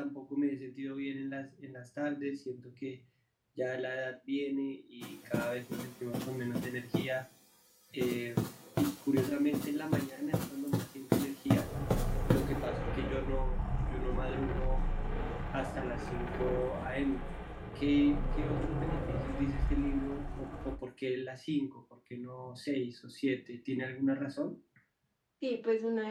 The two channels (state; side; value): identical; both; correlation 1.00